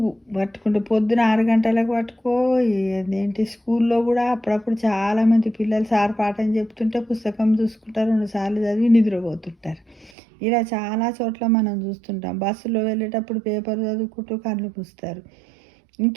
పట్టుకుంటే పొద్దున 6 గంటలకు పట్టుకో. ఏంటి, స్కూల్లో కూడా అప్పుడప్పుడు చాలామంది పిల్లలు సార్ పాఠం చెప్తుంటే పుస్తకం చూసుకుంటారు, 2 సార్లు చదివి నిద్రపోతుంటారు. ఇలా చాలా చోట్ల మనం చూస్తుంటాం. బస్సులో వెళ్ళేటప్పుడు పేపర్ చదువుకుంటూ కళ్ళు మూస్తారు.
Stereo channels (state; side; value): drops out; left; at 10.1 s